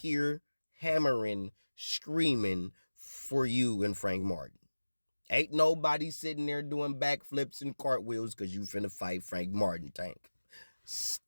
hammering, screaming for you and Frank Martin. Ain't nobody sitting there doing backflips and cartwheels because you finna fight Frank Martin, Tank.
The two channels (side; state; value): both; inverted; correlation -1.00